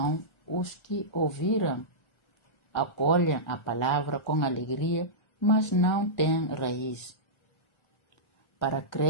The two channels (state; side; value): late; right; 1.3 ms